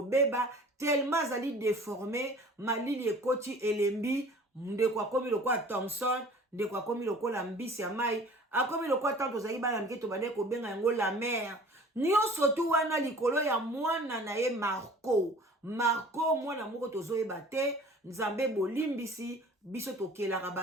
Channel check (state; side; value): normal; both; correlation 0.46